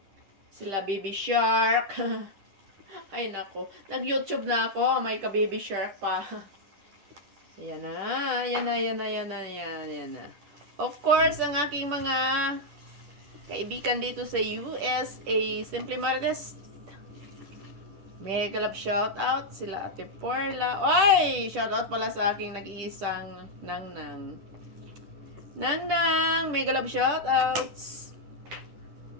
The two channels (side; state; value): left; late; 10 ms